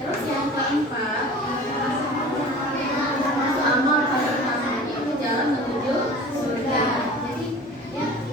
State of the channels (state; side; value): normal; both; correlation 0.40